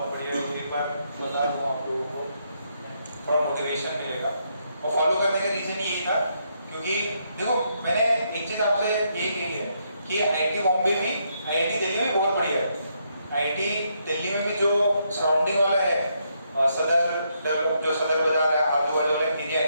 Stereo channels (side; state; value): both; inverted; correlation -0.77